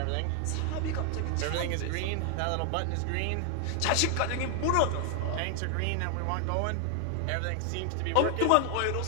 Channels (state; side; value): different; both; correlation 0.00